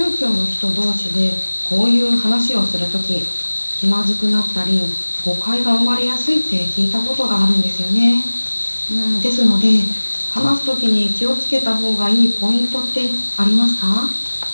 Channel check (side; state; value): both; inverted; correlation -1.00